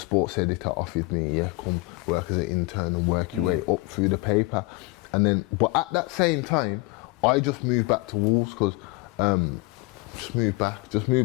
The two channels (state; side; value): quieter; right; 24.1 dB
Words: editor offered me, yeah, come work as an intern and work your way up through the paper. And then, but at that same time, I just moved back to Wolves, because just moved back